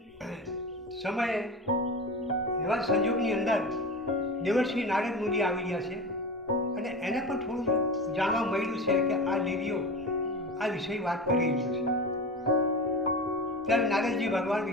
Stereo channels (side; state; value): both; normal; correlation 0.29